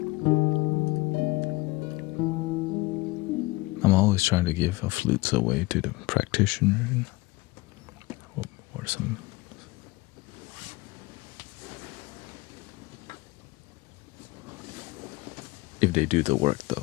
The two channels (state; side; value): quieter; right; 21.5 dB